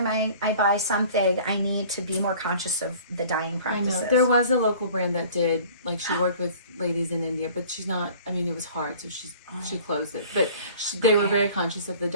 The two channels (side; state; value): both; inverted; correlation -0.48